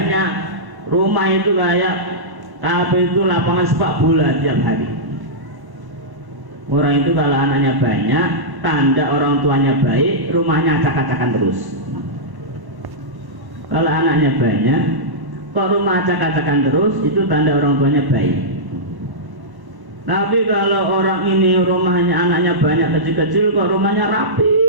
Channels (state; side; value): late; left; 1.1 ms